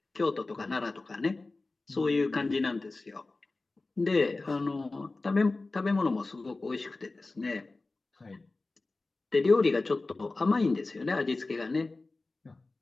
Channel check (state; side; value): quieter; right; 3.4 dB